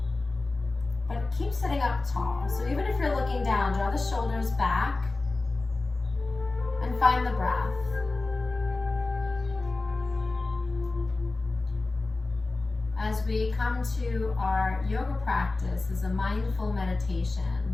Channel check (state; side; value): quieter; right; 3.4 dB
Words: But keep sitting up tall. So even if you're looking down, draw the shoulders back and find the breath. As we come to our yoga practice is a mindful